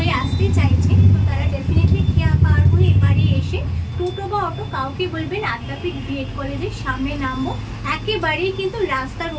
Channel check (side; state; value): both; identical; correlation 1.00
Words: আসতে চাইছেন, তো তারা ডেফিনেটলি খেয়া পার হয়ে এবারে এসে টোটো বা অটো কাউকে বলবেন আদ্যাপীঠ বিএড কলেজের সামনে নামবো। একেবারেই কিন্তু রাস্তার